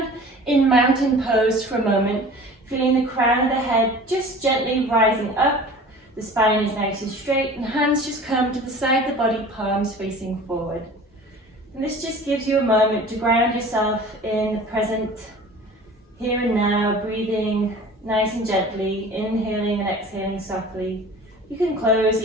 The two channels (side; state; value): both; normal; correlation 0.42